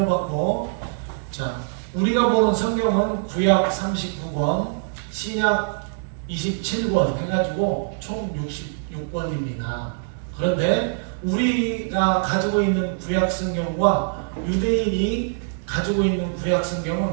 자, 우리가 보는 성경은 구약 39권, 신약 27권 해가지고 총 66권입니다. 그런데 우리가 가지고 있는 구약 성경과 유대인이 가지고 있는 구약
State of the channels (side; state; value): left; silent; digital silence